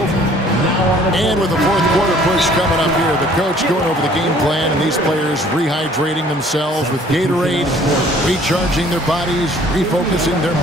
And with the 4th quarter push coming up here, the coach going over the game plan, and these players rehydrating themselves with Gatorade, recharging their bodies, refocusing their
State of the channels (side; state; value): both; normal; correlation 0.56